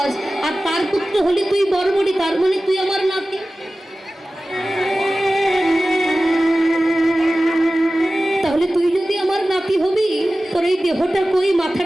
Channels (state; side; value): normal; both; correlation 0.96